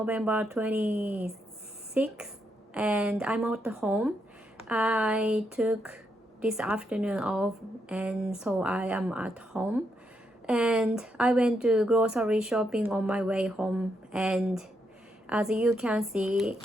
26th, and I'm at home. I took this afternoon off, and so I am at home. And I went to grocery shopping on my way home, and as you can see,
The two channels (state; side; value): normal; both; correlation 0.80